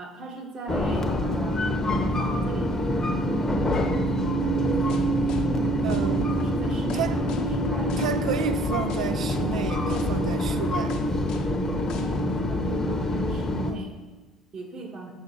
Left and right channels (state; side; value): normal; both; correlation 0.58